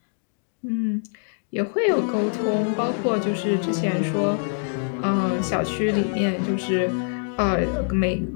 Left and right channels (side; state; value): right; silent; 62 dB below the other